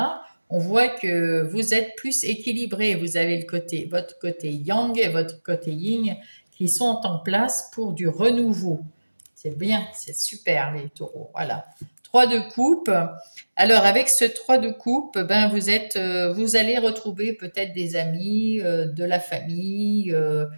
on voit que vous êtes plus équilibré. Vous avez votre côté yang et votre côté yin qui sont en place pour du renouveau. C'est bien, c'est super les taureaux. Voilà. 3 de coupe. Alors avec ce 3 de coupe, ben vous allez retrouver peut-être des amis, de la famille,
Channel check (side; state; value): both; inverted; correlation -1.00